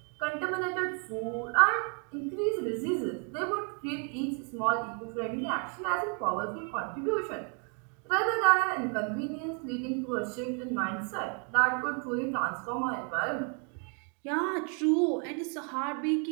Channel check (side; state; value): left; quieter; 39.5 dB